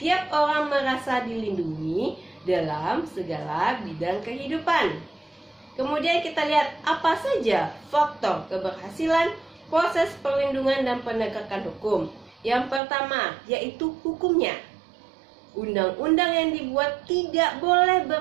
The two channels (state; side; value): drops out; left; at 12.8 s